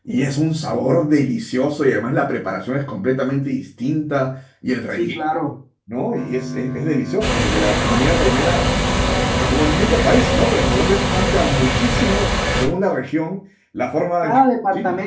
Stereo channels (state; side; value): identical; both; correlation 1.00